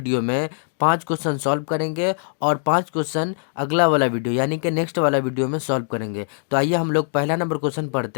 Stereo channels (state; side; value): silent; right; digital silence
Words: में 5 क्वेश्चन सॉल्व करेंगे और 5 क्वेश्चन अगला वाला वीडियो यानी कि नेक्स्ट वाला वीडियो में सॉल्व करेंगे। तो आइए हम लोग पहला नंबर क्वेश्चन